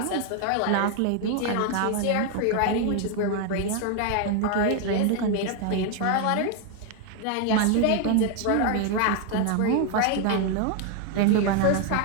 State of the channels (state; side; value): different; both; correlation 0.01